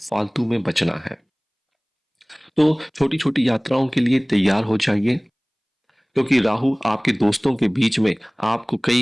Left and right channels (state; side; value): identical; both; correlation 1.00